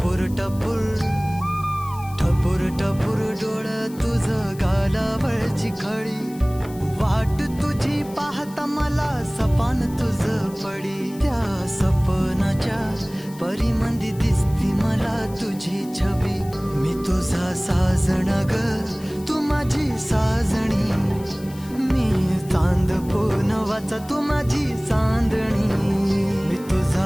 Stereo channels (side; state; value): left; noise; hiss, 21 dB below the sound